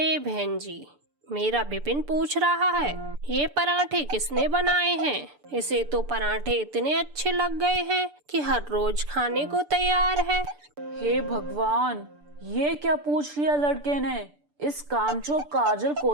बहन जी, मेरा विपिन पूछ रहा है ये पराठे किसने बनाए हैं। इसे तो पराठे इतने अच्छे लग गए हैं कि हर रोज खाने को तैयार है। हे भगवान, ये क्या पूछ लिया लड़के ने। इस कामचोर काजल को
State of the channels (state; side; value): late; left; 6.8 ms